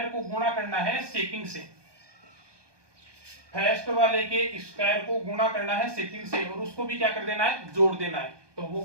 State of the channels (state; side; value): late; left; 1.2 ms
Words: को गुणा करना है सेकंड से, फर्स्ट वाले के स्क्वायर को गुणा करना है सेकंड से, और उसको भी क्या कर देना है, जोड़ देना है। तो वो